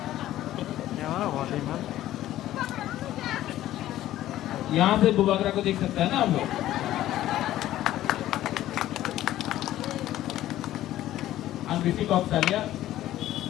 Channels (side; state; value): right; quieter; 13.8 dB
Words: यहाँ से बुबागरा को देख सकता है ना हम लोग। ऋषि कौशल्या,